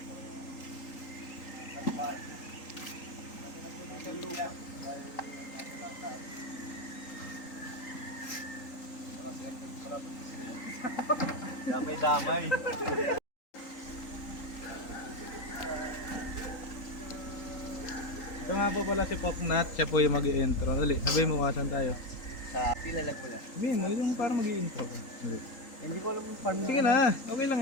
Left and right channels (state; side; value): late; right; 3.8 ms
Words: damay-damay. Ito nga po pala si Poknat, siya po yung mag-i-intro. Dali, sabihin mo kasan tayo. Sa Pilalag mo na. Sabihin mo, yung parang mag-i-intro. Hindi ko alam yung farm. Sige na, okay lang